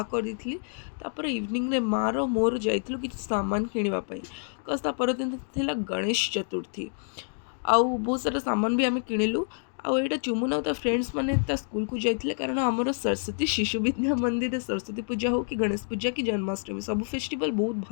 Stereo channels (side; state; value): right; silent; 59 dB below the other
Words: करदी तापर इवनिंग रे मार मोर जाइलु कि सामान किणापी कज परदिन थिला गणेश चतुर्थी आउ बहुत सारा सामान भी आम किणिलु आईटा चुमुन आ फ्रेंड्स मैंने स्कूल को जाते कारण आमर सरस्वती शिशु विद्या मंदिर सरस्वती पूजा हो कि गणेश पूजा कि जन्माष्टमी सब फेस्टिवल बहुत